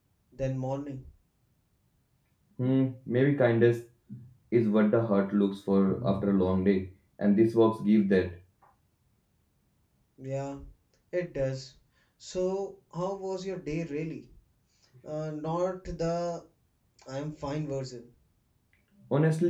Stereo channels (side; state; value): both; identical; correlation 1.00